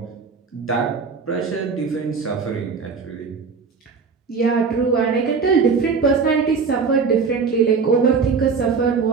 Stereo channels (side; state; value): left; quieter; 5.2 dB